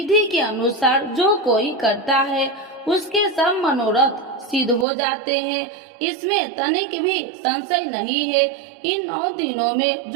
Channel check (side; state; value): left; drops out; at 4.9 s